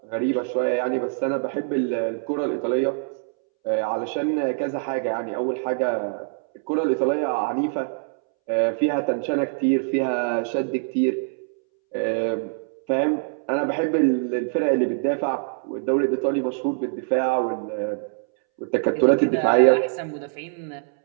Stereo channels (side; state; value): left; silent; 62 dB below the other